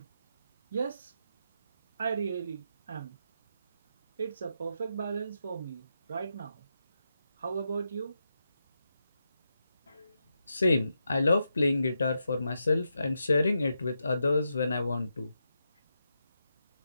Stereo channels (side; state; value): both; inverted; correlation -0.85